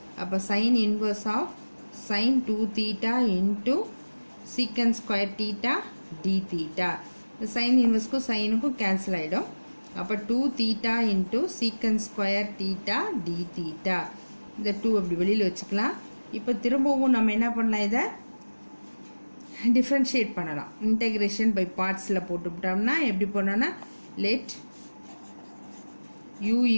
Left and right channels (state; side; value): inverted; both; correlation -1.00